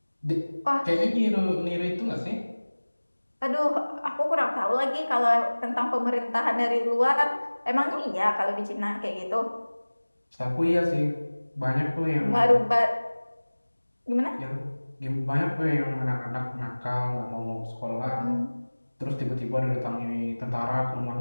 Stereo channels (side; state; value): both; inverted; correlation -1.00